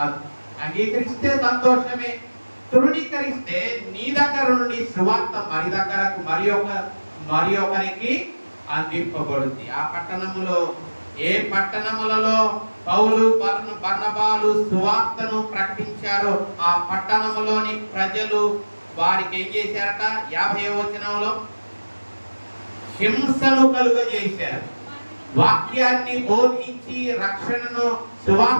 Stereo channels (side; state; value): both; inverted; correlation -1.00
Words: అంగీకరిస్తే సంతోషమే. తృణీకరిస్తే నీ దగ్గర నుండి సువార్త మరి ఒకరికి అందింపబడుద్ది. ఆ పట్టణములో, ఏ పట్టణములలో పౌలు బర్నబాలు సువార్తను ప్రకటించారో ఆ పట్టణములోని ప్రజలు వారికి ఏం చేశారట? 50వ వచనంలో హింసను కలుగజేశారు. వాక్యాన్ని బోధించి రక్షణను,